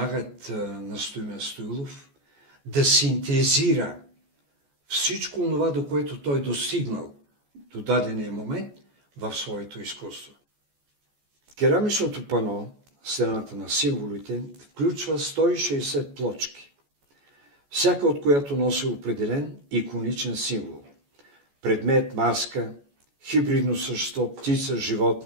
на Стоимен Стоилов да синтезира всичко това, до което той достигнал до дадения момент в своето изкуство. Керамичното пано, стената на символите, включва 160 плочки, всяка от която носи определен иконичен символ. Предмет, маска, хибридно същество, птица,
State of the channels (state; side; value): late; left; 14 ms